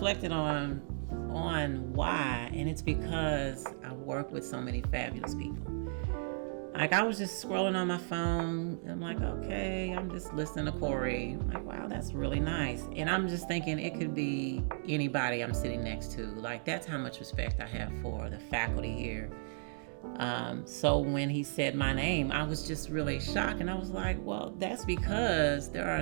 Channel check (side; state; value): left; silent; digital silence